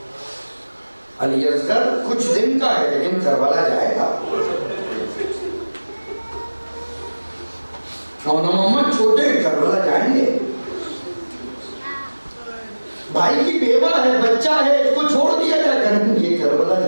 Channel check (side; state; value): both; inverted; correlation -1.00